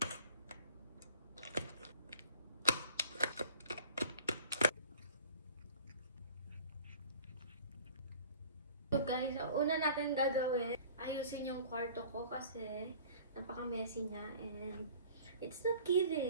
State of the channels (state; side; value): inverted; both; correlation -0.46